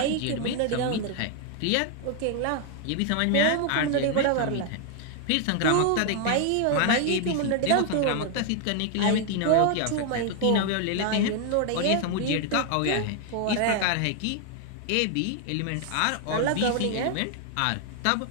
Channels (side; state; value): both; different; correlation 0.00